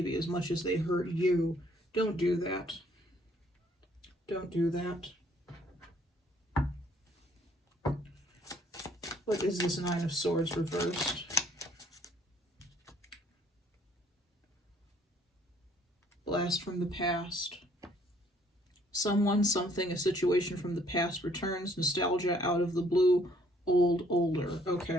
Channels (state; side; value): normal; both; correlation 0.63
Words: as much as they hurt you. Don't do that. Don't do that. What is this Nine of Swords reversed? Blast from the past. Someone, something, a situation from the past returns. Nostalgia out of the blue. Old, older.